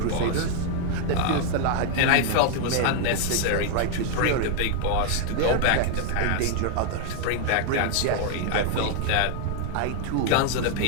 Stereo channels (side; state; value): both; different; correlation 0.00